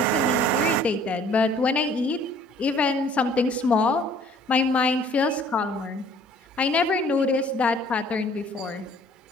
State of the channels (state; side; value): normal; both; correlation 0.55